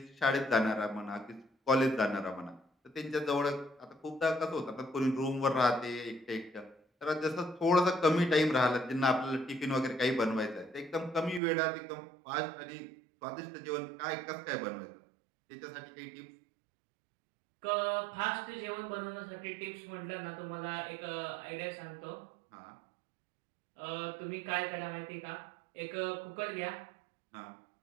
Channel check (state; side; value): drops out; left; at 11.4 s